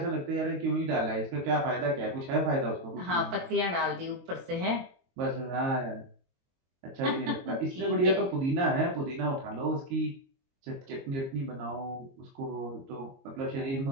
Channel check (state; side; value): late; left; 22 ms